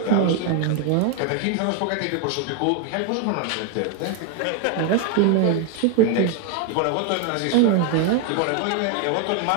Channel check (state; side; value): different; both; correlation 0.01